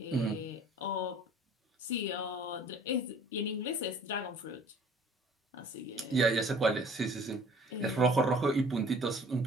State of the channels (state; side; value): normal; both; correlation 0.51